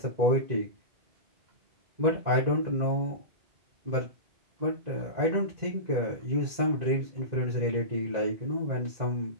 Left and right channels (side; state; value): left; late; 2.0 ms